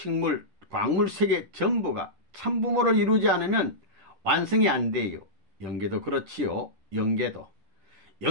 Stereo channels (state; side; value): late; left; 10 ms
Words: 광물 세계 전부가 참부모를 이루지 않으면 완성이 안 돼요. 영계도 그렇지요. 영계도.